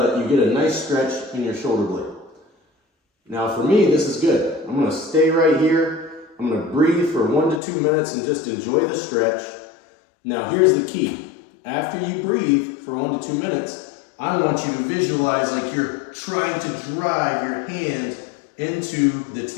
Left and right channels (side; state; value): right; drops out; at 7.6 s